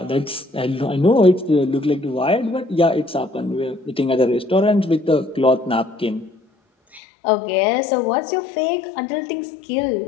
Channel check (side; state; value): right; drops out; at 7.0 s